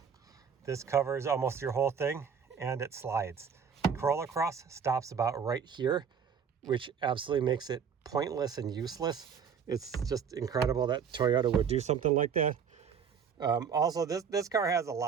this covers almost your whole thing, and it slides. The Corolla Cross stops about right here, which absolutely makes it pointless and useless. It's just incredible that Toyota would do something like that. Also, this car has a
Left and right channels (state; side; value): quieter; left; 6.9 dB